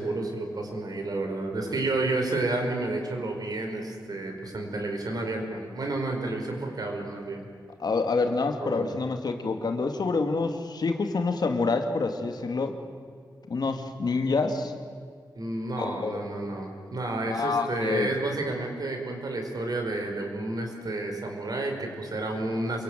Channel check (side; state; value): both; normal; correlation 0.72